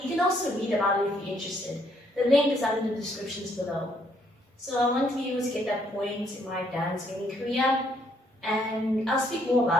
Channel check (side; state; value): both; normal; correlation 0.69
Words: You can also read about it if you're interested. The link is under the descriptions below. So I want to be able to get that point in my dance gaming career, and I'll speak more